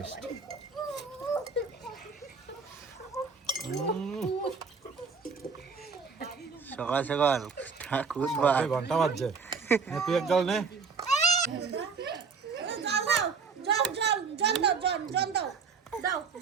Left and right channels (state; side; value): quieter; left; 5.3 dB